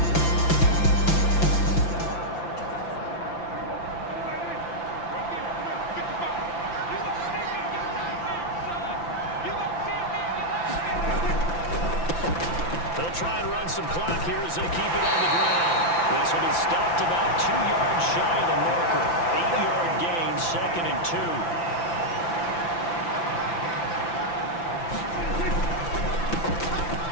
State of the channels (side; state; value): right; late; 5.9 ms